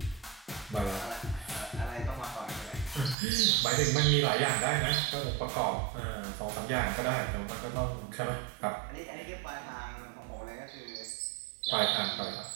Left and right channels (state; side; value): drops out; left; at 3.2 s